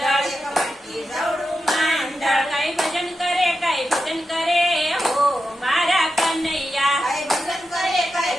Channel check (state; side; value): normal; both; correlation 0.89